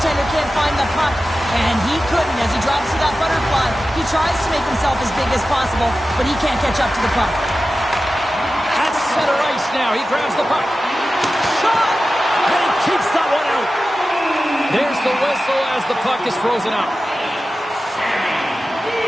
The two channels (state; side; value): normal; both; correlation 0.94